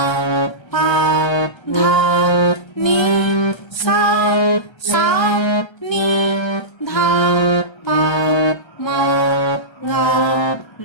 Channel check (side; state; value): right; late; 1.3 ms